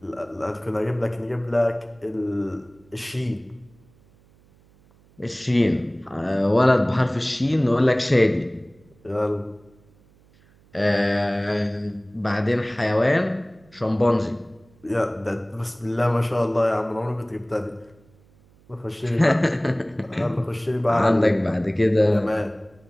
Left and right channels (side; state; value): right; noise; hum, 30 dB below the sound